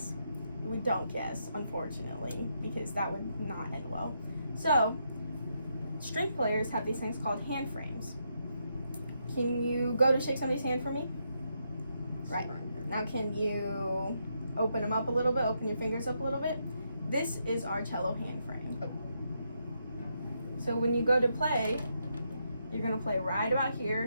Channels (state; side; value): inverted; both; correlation -0.79